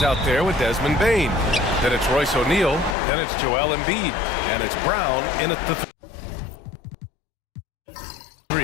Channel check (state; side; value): drops out; right; at 3.0 s